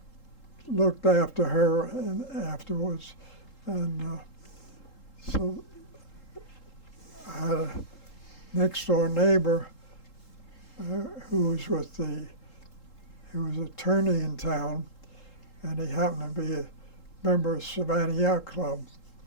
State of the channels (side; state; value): right; late; 3.8 ms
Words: looked after her afterwards. And so I had a next door neighbor who was attorney in town, and he happened to be a member of Savannah Yacht Club.